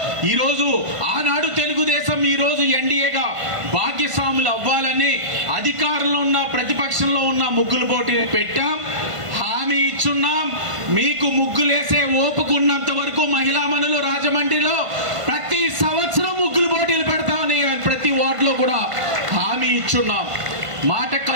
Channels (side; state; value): left; late; 1.5 ms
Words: ఈరోజు ఆనాడు తెలుగుదేశం ఈరోజు ఎన్డీఏగా భాగ్యస్వాములు అవ్వాలని అధికారంలో ఉన్న ప్రతిపక్షంలో ఉన్న ముగ్గులు పోటీ పెట్టాం, హామీ ఇచ్చున్నాం. మీకు ముగ్గులేసే ఓపుకున్నంత వరకు మహిళా మనులు రాజమండ్రిలో ప్రతి సంవత్సరం ముగ్గులు పోటీలు పెడతామని ప్రతి వార్డులో కూడా హామీ ఇచ్చున్నాం. మాట